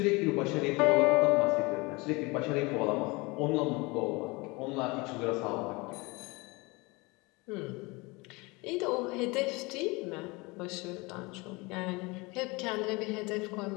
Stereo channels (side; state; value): right; quieter; 25.3 dB